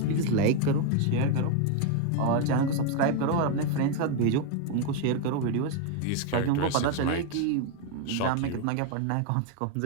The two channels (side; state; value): both; different; correlation 0.01